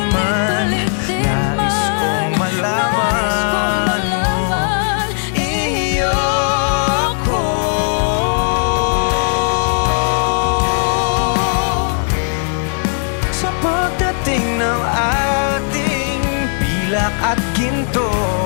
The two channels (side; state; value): right; silent; digital silence